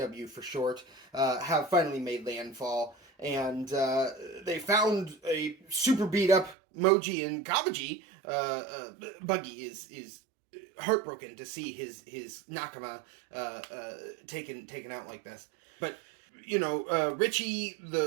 for short, have finally made landfall. And they found a super beat up Moji and Kabaji. Buggy is heartbroken to see his Nakama taken out like this. But you know, Richie,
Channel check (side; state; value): left; drops out; at 6.6 s